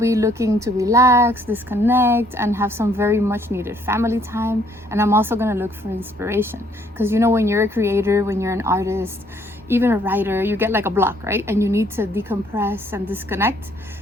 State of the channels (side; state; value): both; normal; correlation 0.65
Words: looking to relax, disconnect, and have some very much needed family time. And I'm also going to look for inspiration because you know, when you're a creator, when you're an artist, even a writer, you get like a block, right? And you need to decompress and disconnect.